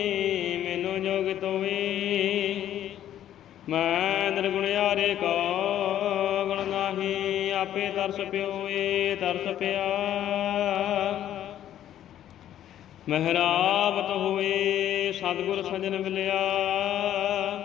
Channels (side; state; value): right; quieter; 11.4 dB